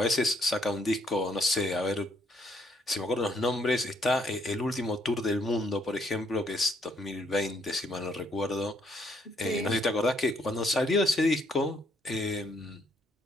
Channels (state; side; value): normal; both; correlation 0.70